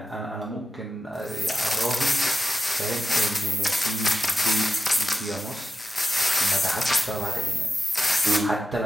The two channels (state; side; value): normal; both; correlation 0.91